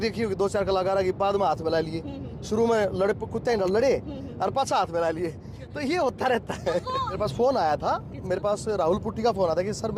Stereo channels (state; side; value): identical; both; correlation 1.00